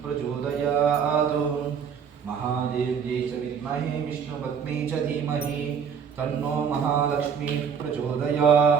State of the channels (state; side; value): quieter; left; 7.0 dB